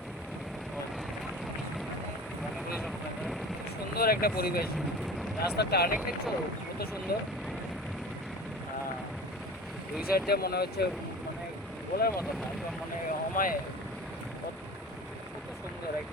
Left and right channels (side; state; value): both; normal; correlation 0.39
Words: মণিপুরি সম্প্রদায়। সুন্দর একটা পরিবেশ, রাস্তার টার্নিং দেখছো কত সুন্দর। দুই সাইড দিয়ে মনে হচ্ছে, মানে বলার মতো না, একদম মানে অমায়, কত সুন্দর